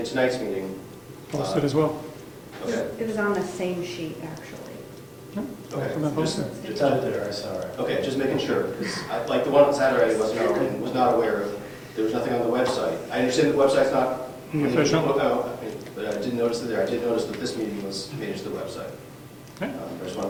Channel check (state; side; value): identical; both; correlation 1.00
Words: tonight's meeting? Posted as well. Okay, It was on the same sheet, actually. okay. Posted. It's out there, I saw it. Okay, just making sure, because like the one on Saturday was not aware of, there was nothing on the website. I understand the website's not Official. But I didn't notice it there. I did notice that this meeting was made to the website. Okay. I just want